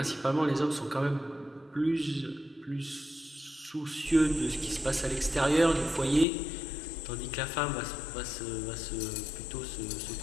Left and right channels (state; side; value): drops out; right; at 6.2 s